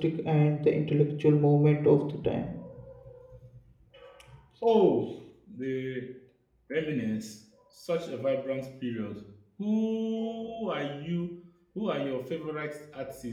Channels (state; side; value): identical; both; correlation 1.00